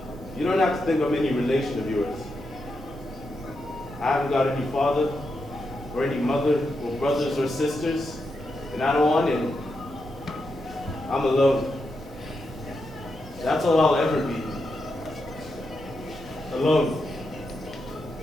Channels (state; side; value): noise; right; hum, 23 dB below the sound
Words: You don't have to think I'm any relation of yours. I haven't got any father, or any mother, or brothers or sisters, and I don't want any. I'm alone. That's all I'll ever be. Alone.